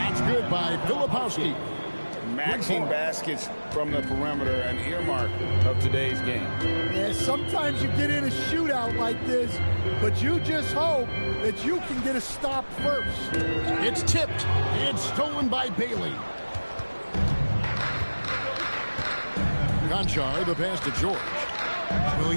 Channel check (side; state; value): both; inverted; correlation -1.00